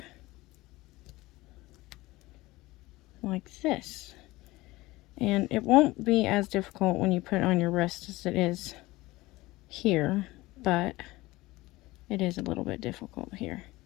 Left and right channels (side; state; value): right; quieter; 19.7 dB